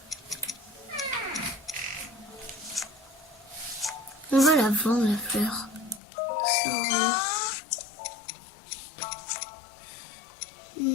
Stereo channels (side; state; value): right; drops out; at 6.0 s